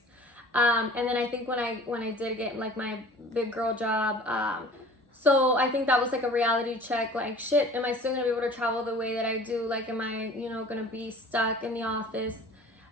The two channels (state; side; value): normal; both; correlation 0.45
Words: And then I think when I did get like my big girl job, so I think that was like a reality check, like, shit, am I still gonna be able to travel the way that I do? Like, am I, gonna be stuck in the office?